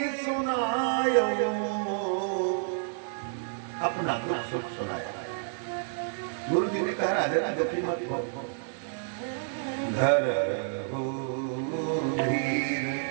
सुनायो, अपना दुख सुख सुनाया। गुरु जी ने कहा राजा ना दुखी मत हो, घर हो धीर,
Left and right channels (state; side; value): silent; left; digital silence